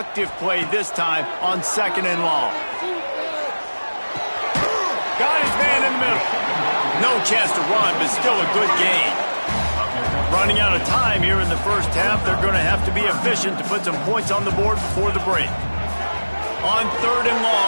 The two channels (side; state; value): both; inverted; correlation -1.00